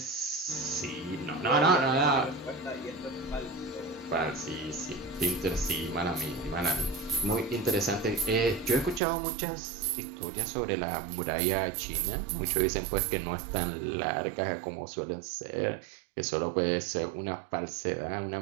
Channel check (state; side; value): drops out; left; at 9.0 s